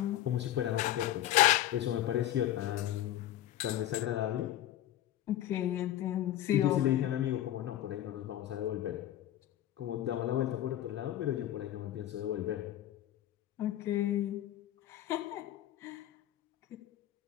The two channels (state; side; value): quieter; right; 13.0 dB